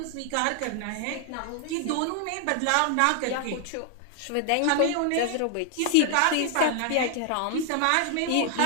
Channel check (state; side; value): different; both; correlation 0.00